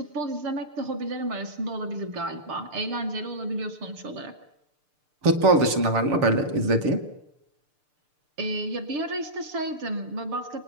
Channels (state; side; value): late; left; 6.7 ms